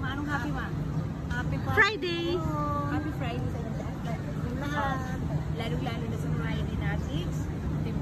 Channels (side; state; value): both; identical; correlation 1.00